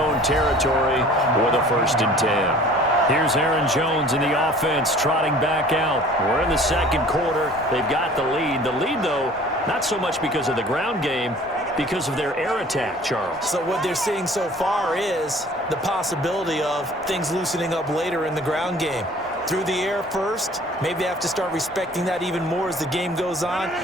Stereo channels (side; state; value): both; normal; correlation 0.49